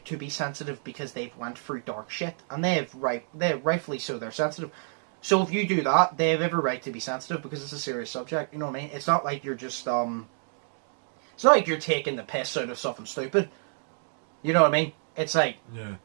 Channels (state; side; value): silent; left; digital silence